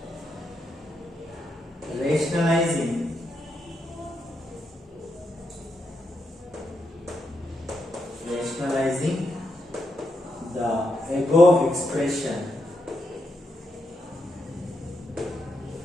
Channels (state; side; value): normal; both; correlation 0.82